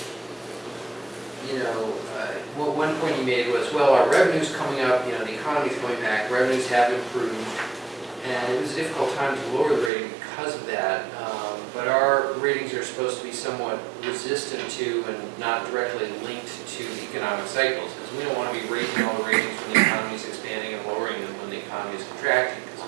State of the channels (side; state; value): left; drops out; at 9.9 s